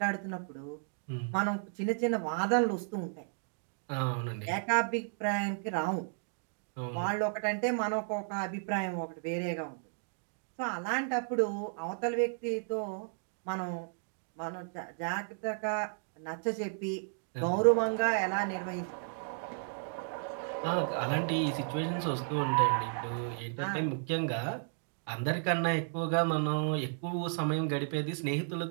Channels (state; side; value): silent; left; digital silence